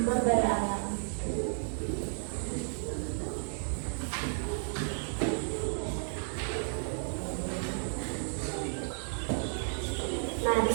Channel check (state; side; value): silent; left; digital silence